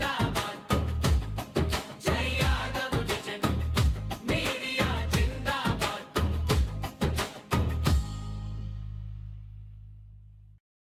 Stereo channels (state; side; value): identical; both; correlation 1.00